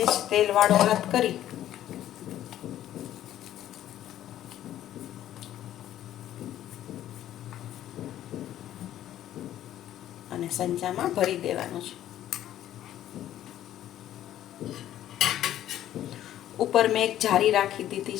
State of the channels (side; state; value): right; quieter; 12.3 dB